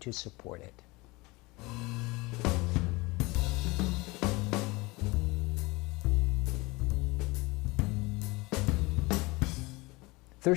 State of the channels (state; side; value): quieter; right; 23.5 dB